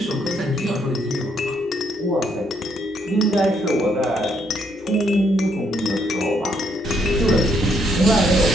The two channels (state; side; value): normal; both; correlation 0.72